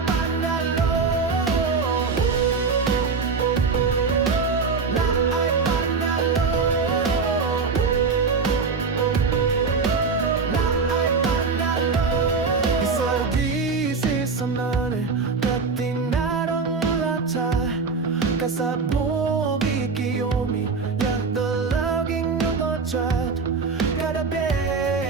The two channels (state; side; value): quieter; left; 4.8 dB